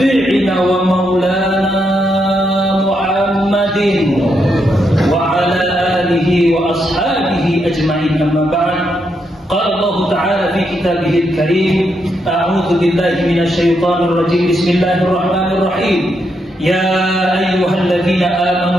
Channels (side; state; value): both; normal; correlation 0.80